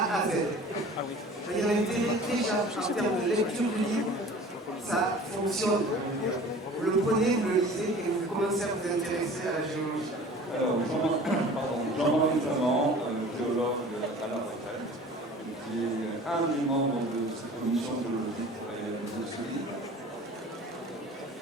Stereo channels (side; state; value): both; normal; correlation 0.44